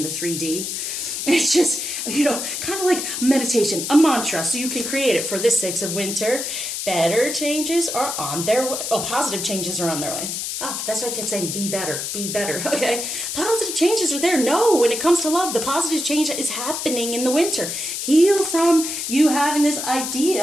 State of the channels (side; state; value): left; noise; hiss, 4 dB below the sound